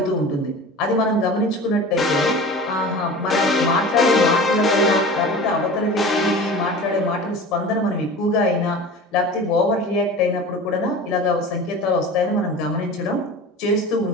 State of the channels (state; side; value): normal; both; correlation 0.36